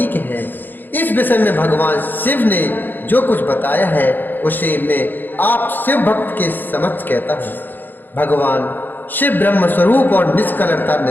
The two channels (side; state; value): right; late; 0.090 ms